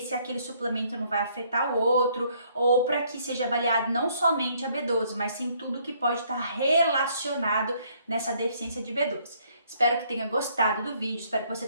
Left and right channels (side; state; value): both; inverted; correlation -0.65